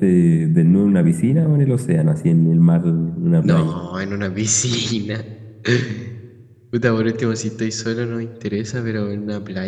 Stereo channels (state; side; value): identical; both; correlation 1.00